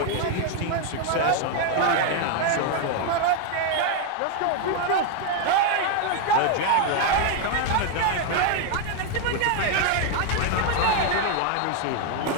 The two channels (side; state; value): both; different; correlation 0.01